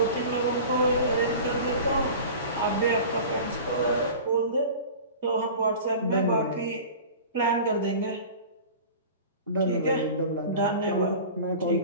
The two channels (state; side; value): inverted; both; correlation -0.38